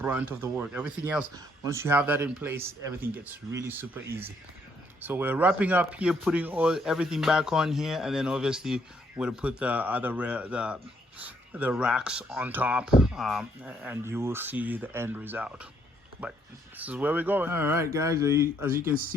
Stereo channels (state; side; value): normal; both; correlation 0.70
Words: of the work. Everything else, once you have that in place, everything gets really super easy. So we're wrapping up here, putting everything back on here, and then obviously we're gonna put the other the racks on top, and you will see the end result. But this is where we're going. All right, guys, as you can